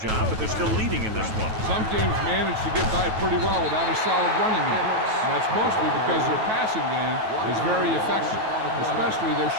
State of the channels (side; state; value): left; late; 9.2 ms